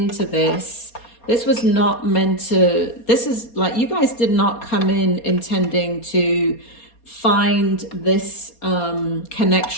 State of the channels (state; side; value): late; right; 4.3 ms